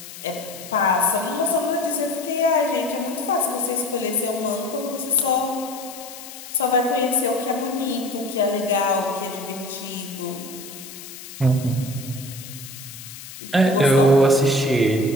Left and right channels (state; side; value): noise; left; hiss, 14 dB below the sound